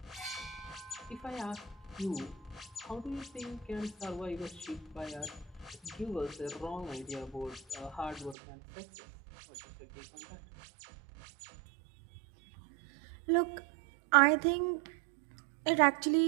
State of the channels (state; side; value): drops out; left; at 8.3 s